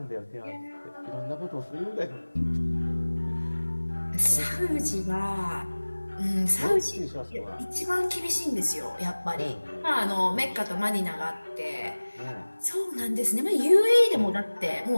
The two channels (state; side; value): inverted; both; correlation -1.00